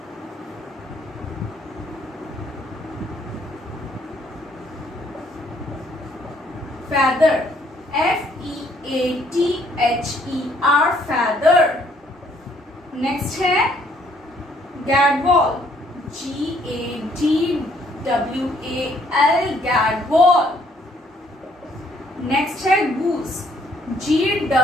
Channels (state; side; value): normal; both; correlation 0.66